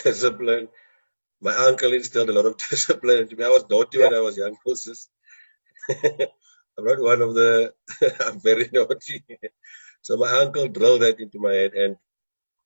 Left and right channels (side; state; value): both; inverted; correlation -1.00